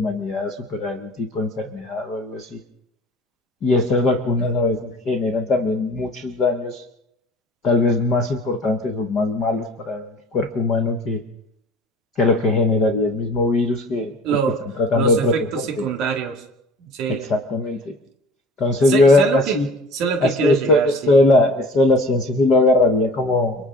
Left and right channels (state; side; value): normal; both; correlation 0.43